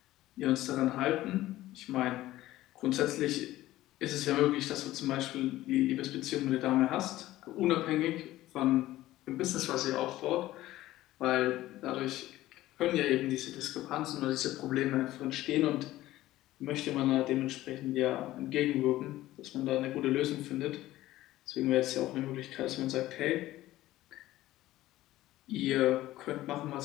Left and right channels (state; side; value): quieter; right; 15.7 dB